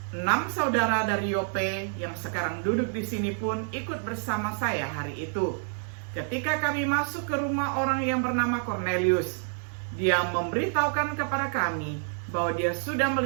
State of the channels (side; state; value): left; silent; 59 dB below the other